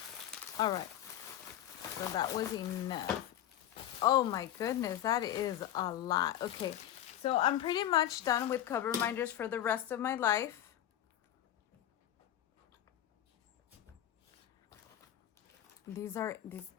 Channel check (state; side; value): quieter; right; 11.8 dB